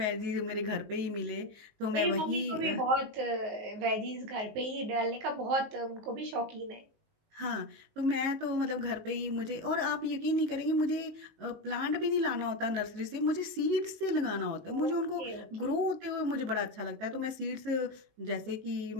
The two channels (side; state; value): left; late; 19 ms